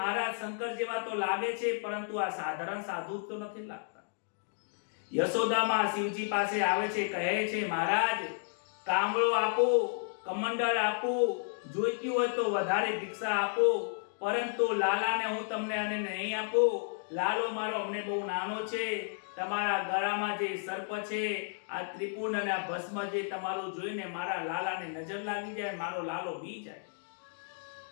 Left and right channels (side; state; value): right; silent; digital silence